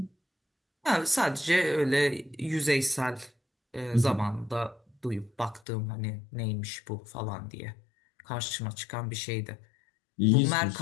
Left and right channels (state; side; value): drops out; right; at 5.6 s